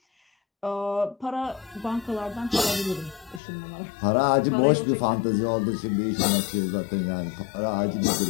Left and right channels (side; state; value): right; drops out; at 3.4 s